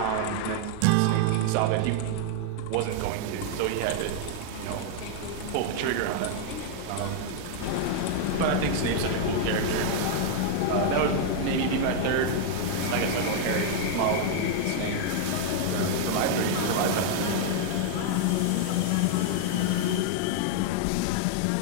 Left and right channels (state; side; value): different; both; correlation 0.00